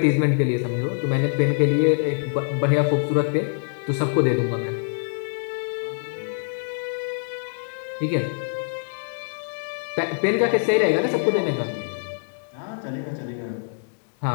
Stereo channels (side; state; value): right; silent; digital silence